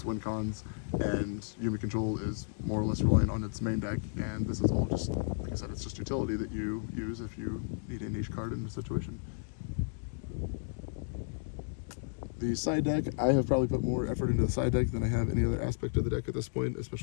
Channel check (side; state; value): right; silent; digital silence